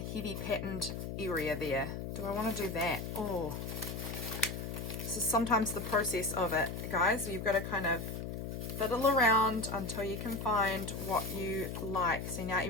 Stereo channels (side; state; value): left; noise; hum, 5 dB below the sound